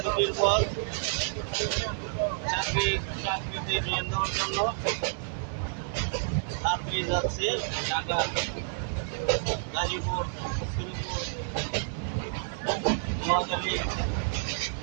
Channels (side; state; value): left; silent; digital silence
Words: ছুটির পর চাকরিতে জয়েন দেওয়ার জন্য রাত্রি যাচ্ছে ঢাকা, গাজীপুর, শ্রীপুর, নোয়াখালী,